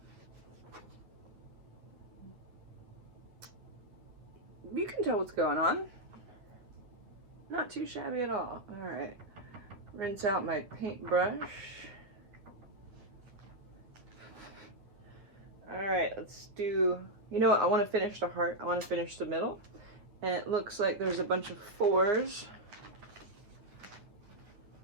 You can tell what's going on. Not too shabby at all. All right. Rinse out my paintbrush. All right, let's do, you know what, I want to finish the heart. I want to finish the middle. And it looks like there's a bunch of 4s.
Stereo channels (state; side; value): late; left; 9.9 ms